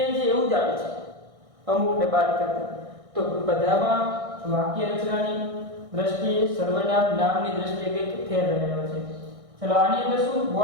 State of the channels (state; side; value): late; left; 1.6 ms